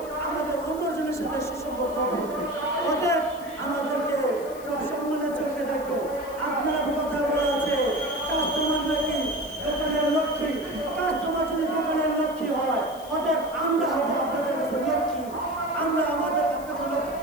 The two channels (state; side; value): noise; left; hiss, 20 dB below the sound